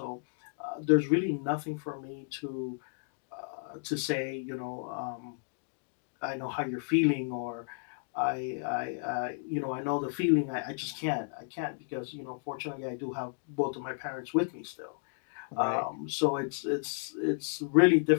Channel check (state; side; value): silent; right; digital silence